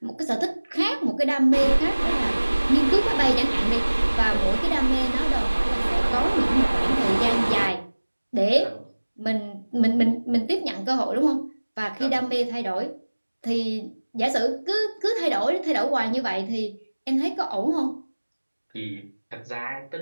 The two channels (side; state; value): both; inverted; correlation -1.00